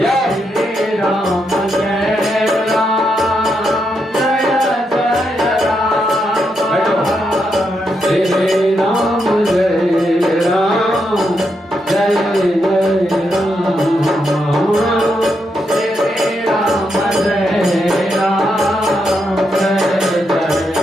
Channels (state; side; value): normal; both; correlation 0.81